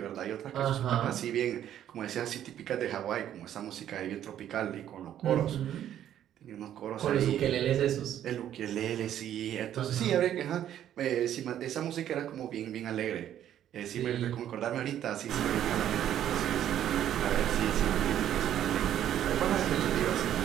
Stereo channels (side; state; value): left; quieter; 11.0 dB